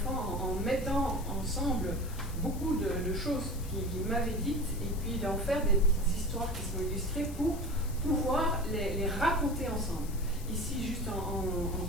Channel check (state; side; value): noise; left; hiss, 16 dB below the sound